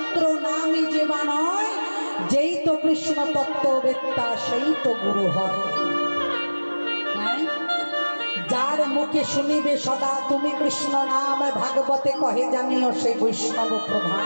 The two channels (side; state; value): both; inverted; correlation -1.00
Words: নামি যেবা নয়, যেই তো কৃষ্ণ তত্ত্ববেত্তা সেই তো গুরু হয়। যার মুখে শুনিবে সদা তুমি কৃষ্ণ নাম, ভাগবতে কহে জানিও সেই বৈষ্ণব প্রধান।